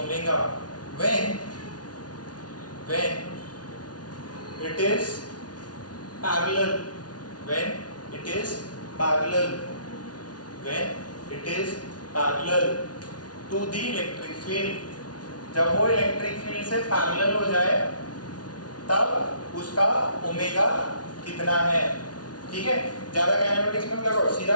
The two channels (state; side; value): late; right; 0.69 ms